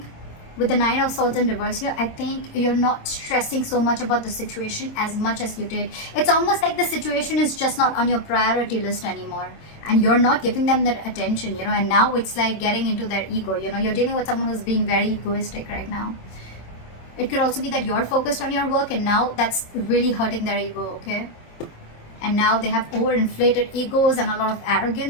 with the Nine of Swords in reverse here, I think you're not stressing so much about the situation as much as you did. It's almost like the situation is just not on your priority list anymore, and you're not giving them that attention, you know, and now it's like getting into their ego, you know. You're dealing with someone who's being very egoistic right now. It could also be that you're focused on your work, and now that's really hurting their ego, okay? And now they have overinflated egos and a lot of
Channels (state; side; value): late; right; 26 ms